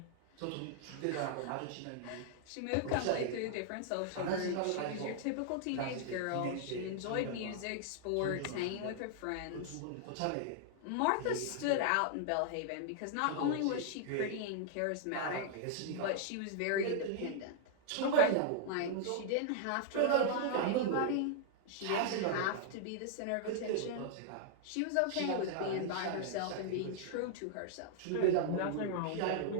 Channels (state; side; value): different; both; correlation -0.01